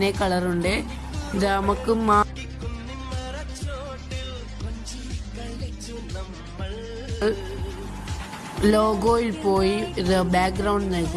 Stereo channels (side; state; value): both; identical; correlation 1.00